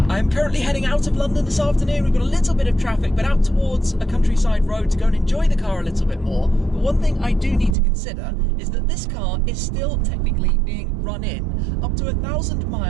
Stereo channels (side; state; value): left; drops out; at 7.8 s